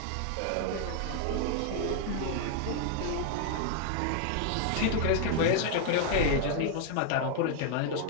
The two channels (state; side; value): different; both; correlation 0.00